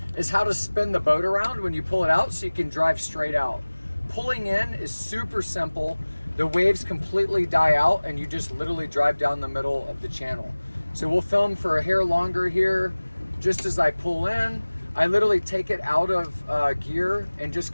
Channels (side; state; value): both; inverted; correlation -1.00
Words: is how to spin the boat around when you pull it out so you can drive straight out. Pulling in is super simple. The waves completely die out and you just literally drive down the middle of the channel. So we'll film for a hair longer here. Just as I pull in, I literally take it out of gear and just